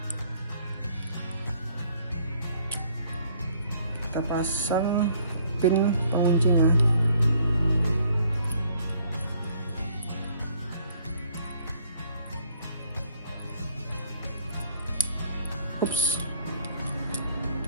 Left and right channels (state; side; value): inverted; both; correlation -0.61